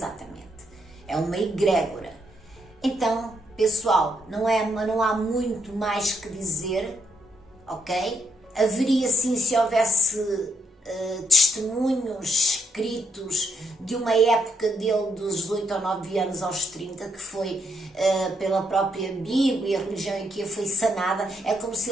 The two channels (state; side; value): normal; both; correlation 0.76